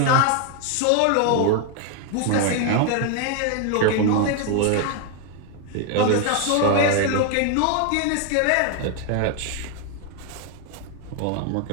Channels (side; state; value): both; different; correlation 0.01